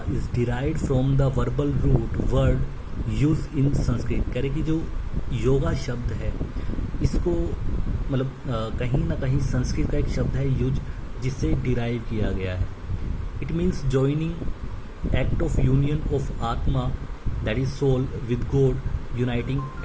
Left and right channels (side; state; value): both; identical; correlation 1.00